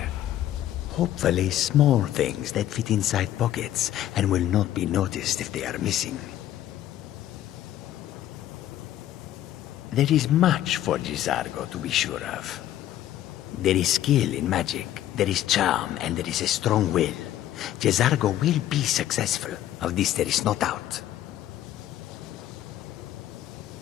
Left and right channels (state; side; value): quieter; right; 12.6 dB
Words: Hopefully small things that fit inside pockets and will not be noticed if they are missing. There is much for Jizargo to be sure of. There is skill in magic, there is charm, and there is a strong will. Jizargo will be successful. Of this there is no doubt.